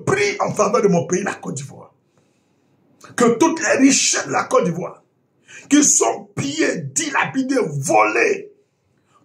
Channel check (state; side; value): identical; both; correlation 1.00